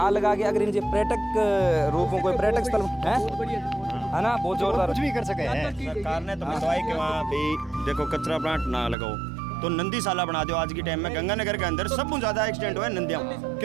लगा के अगर इनके पर्यटक रूपों कोई पर्यटक स्थल है ना, बहुत जोरदार कुछ भी कर सके हैं सरकार ने तो बताया कि वहाँ भी देखो कचरा प्लांट ना लगाओ तो नंदी साला बना दो। आज के टाइम में गंगानगर के अंदर सबसे ज्यादा एक्सीडेंट हुआ है नंदियां,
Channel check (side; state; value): left; drops out; at 9.0 s